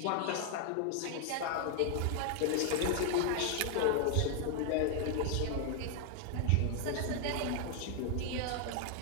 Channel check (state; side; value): different; both; correlation 0.00